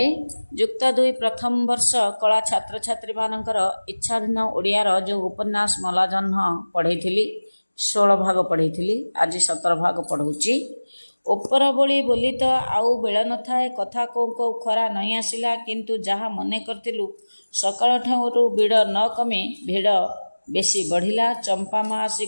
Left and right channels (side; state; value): both; inverted; correlation -1.00